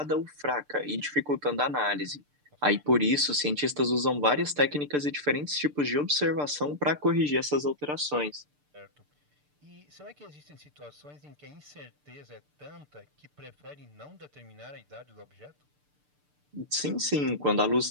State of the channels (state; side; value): late; left; 6.8 ms